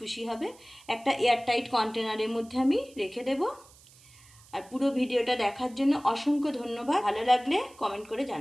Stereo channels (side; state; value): right; noise; hiss, 25 dB below the sound